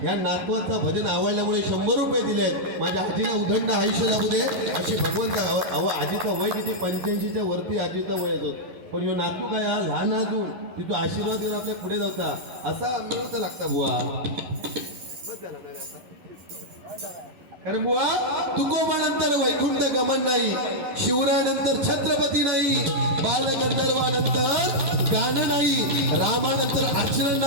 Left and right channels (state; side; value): late; left; 11 ms